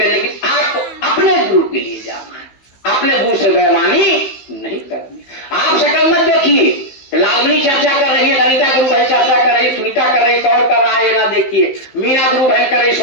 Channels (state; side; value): late; right; 15 ms